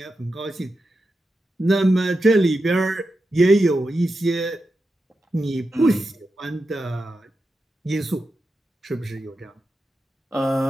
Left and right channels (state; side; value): normal; both; correlation 0.89